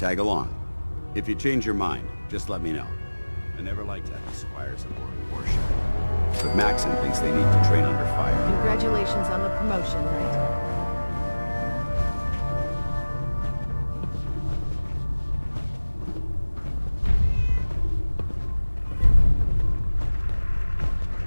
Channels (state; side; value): inverted; both; correlation -1.00